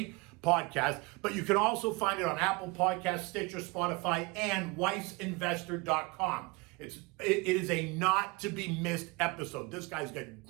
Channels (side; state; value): left; quieter; 25.9 dB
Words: podcast, but you can also find it on Apple Podcasts, Stitcher, Spotify, and WeissInvestor.com. It is a not to be missed episode. This guy's got